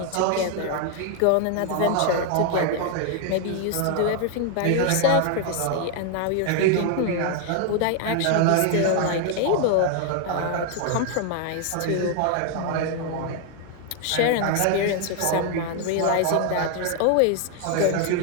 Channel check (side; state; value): both; different; correlation 0.00